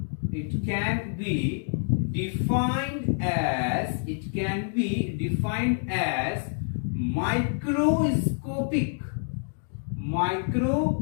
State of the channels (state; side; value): silent; right; digital silence